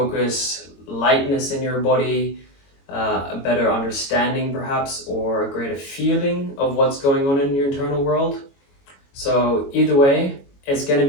lightness in your body, a better understanding perhaps, or a greater feeling of what's going on in your internal world. So either way, it's going to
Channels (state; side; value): late; right; 22 ms